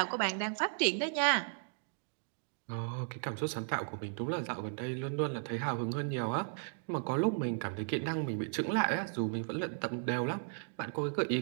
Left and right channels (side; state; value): left; silent; digital silence